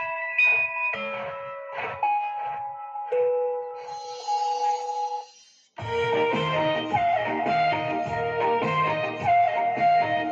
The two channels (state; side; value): identical; both; correlation 1.00